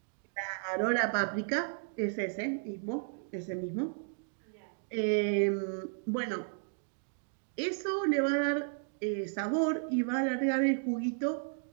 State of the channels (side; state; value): left; silent; digital silence